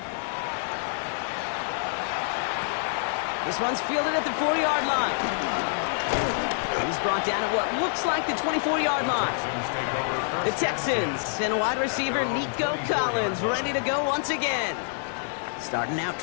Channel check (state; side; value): silent; right; digital silence